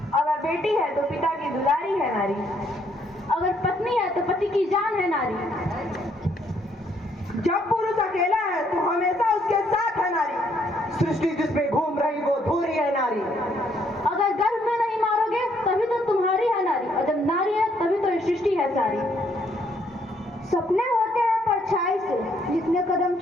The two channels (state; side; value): normal; both; correlation 0.69